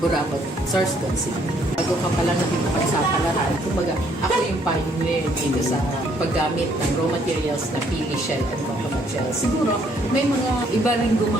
Burabot, Sorsogon City. Bago ka palang nakipagsapalaran, kumbaga ako yung pioneer dito sa paggamit ng raw materials na pili shell and coconut shell. Siguro may mga iba rin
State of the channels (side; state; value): both; normal; correlation 0.67